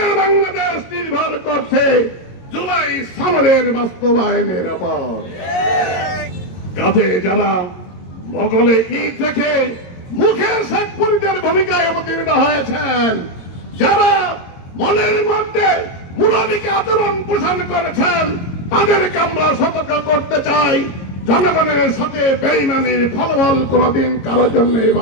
বাংলাদেশ নির্ভর করছে জুলাই সনদের বাস্তবায়নের উপর। কাজে যারা মোগলে ঈদ থেকে মুখে শেখ ফরিদের ভূমিকায় অবতীর্ণ হয়েছেন, যারা মনের মধ্যে মুনাফিকে আচরণ পোষণ করেছেন, তাদেরকে আমরা সতর্ক করতে চাই, জনগণের সাথে বেইমানির ফলাফল কোনদিন কারোর জন্য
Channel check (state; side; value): late; right; 22 ms